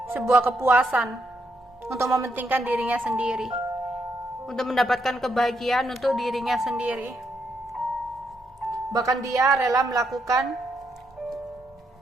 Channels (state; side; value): normal; both; correlation 0.78